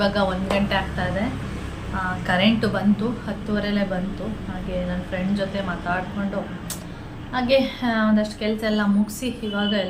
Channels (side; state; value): both; identical; correlation 1.00